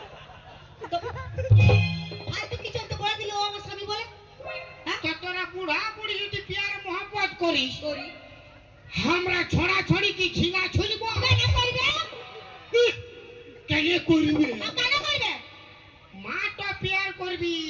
তো ফালতু কিছু তো বলে দিলে ও আমার স্বামী বলে? হ্যাঁ তো তোরা বুড়া বুড়ি যদি প্যার মোহব্বত করিস করি। আমরা ছড়া ছড়ি কি ঝিঙা ছুলব কেন করবে? কেন করবে কেন করবে? মা তো প্যার করবি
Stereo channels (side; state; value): both; identical; correlation 1.00